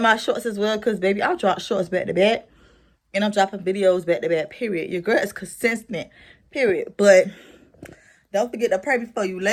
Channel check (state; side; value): identical; both; correlation 1.00